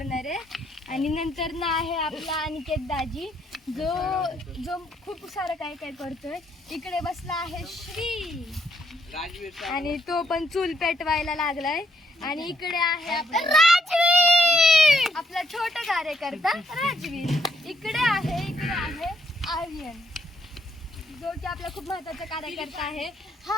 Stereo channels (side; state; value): both; normal; correlation 0.73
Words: आहे. आणि नंतर ना आहे आपला अनिकेत दाजी, जो खूप सारं काय काय करतोय. इकडे बसला आहे श्री आणि तो पण चूल पेटवायला लागलाय. आणि इकडे आहे आपला राजवीर, आपला छोटा कार्यकर्ता राजवीर. इकडे आहे आर्यन, जो की आपला खूप महत्वाचा कार्यकर्ता आहे. हा